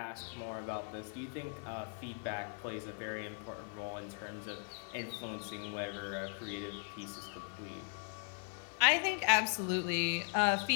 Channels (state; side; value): silent; right; 52 dB below the other